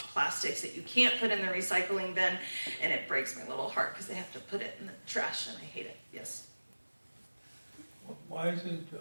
plastics that you can't put in the recycling bin, and it breaks my little heart because they have to put it in the trash and I hate it. Yes? Why isn't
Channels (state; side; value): inverted; both; correlation -1.00